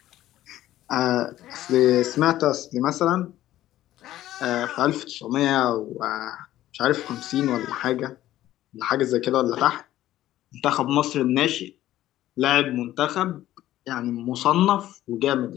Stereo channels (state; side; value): quieter; right; 14.0 dB